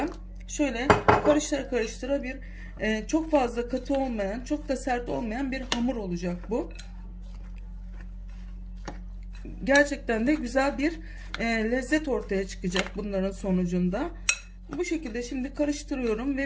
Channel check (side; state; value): both; identical; correlation 1.00